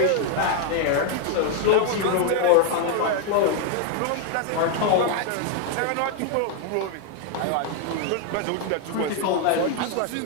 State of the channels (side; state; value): both; different; correlation 0.00